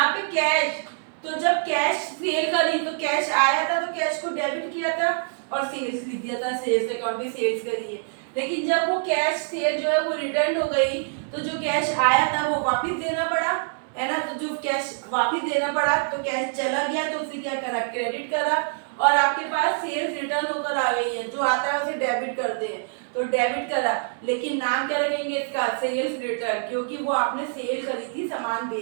पे कैश, तो जब कैश सेल करी तो कैश आया था तो कैश को डेबिट किया था और सेल्स लिख दिया था, सेल्स अकाउंट में सेल्स करी है। लेकिन जब वो कैश सेल जो है वो रिटर्न हो गई तो जो कैश आया था वो वापस देना पड़ा, है ना। तो जो कैश वापस देना पड़ा तो कैश चला गया तो उसे क्या करा? क्रेडिट करा। और आपके पास सेल्स रिटर्न होकर आ गई है, जो आता है उसे डेबिट करते हैं, तो डेबिट करा। लेकिन नाम क्या रखेंगे इसका? सेल्स रिटर्न, क्योंकि वो आपने सेल करी थी, सामान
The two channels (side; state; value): left; silent; digital silence